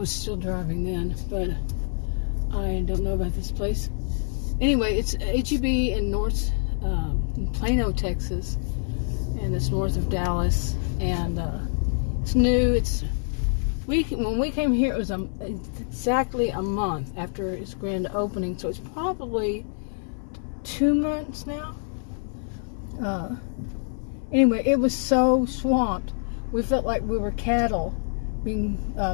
still driving then, but I don't know about this place. Anyway, it's H-E-B in in Plano, Texas, and it's north of Dallas, and it's new. When we came here, it was exactly a month after its grand opening, so it's probably 2 months now. Anyway, it was so swamped. We felt like we were cattle being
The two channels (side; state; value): right; silent; digital silence